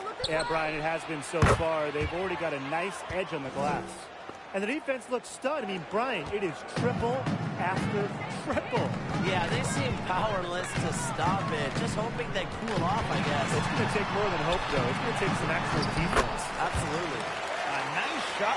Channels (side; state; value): both; identical; correlation 1.00